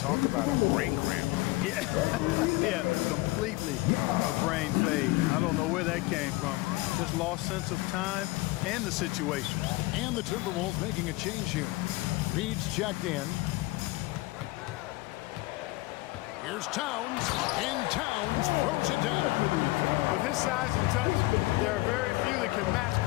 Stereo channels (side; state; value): right; quieter; 20.8 dB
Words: about a brain cramp. Yeah, yeah, completely a brain fade. I don't know where that came from. Just lost sense of time and the situation. And the Timberwolves making a change here. Reed's checked in. Here's Towns, and Towns throws it down. With his size and touch, there are very few that can match